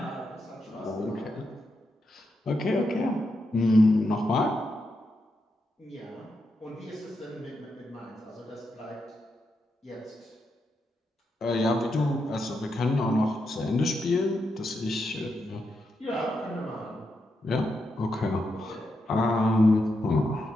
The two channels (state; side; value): normal; both; correlation 0.84